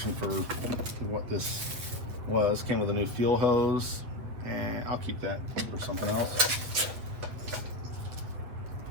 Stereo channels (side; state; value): left; late; 8.2 ms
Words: for what this was. Came with a new fuel hose, and I'll keep that for something else.